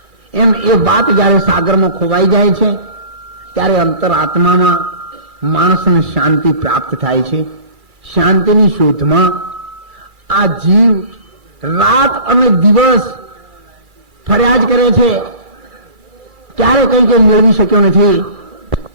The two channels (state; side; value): late; left; 2.3 ms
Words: એમ એ વાત જયારે સાગરમાં ખોવાઈ જાય છે ત્યારે અંતરાત્મામાં માણસને શાંતિ પ્રાપ્ત થાય છે. શાંતિની શોધમાં આ જીવ રાત અને દિવસ ફરિયાદ કરે છે, ક્યારે કઈ કઈ મેળવી શક્યો નથી